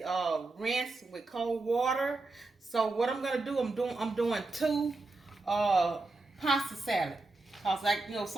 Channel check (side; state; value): left; quieter; 3.3 dB